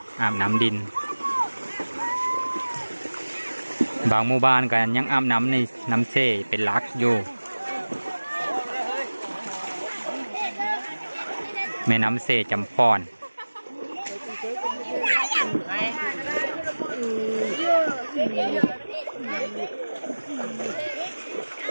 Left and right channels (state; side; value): inverted; both; correlation -1.00